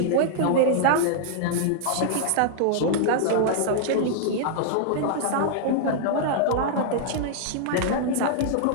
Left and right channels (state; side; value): different; both; correlation -0.01